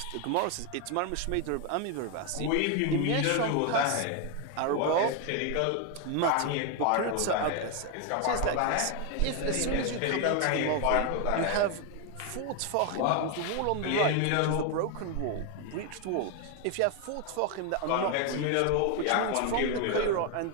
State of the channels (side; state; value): both; different; correlation 0.01